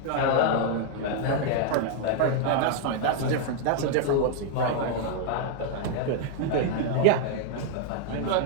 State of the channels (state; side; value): different; both; correlation 0.00